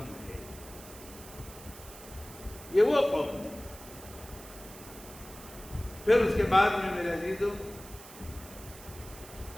ہے، یہ وہ قوم ہے۔ پھر اس کے بعد میں میرے عزیزوں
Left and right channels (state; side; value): noise; right; hiss, 16 dB below the sound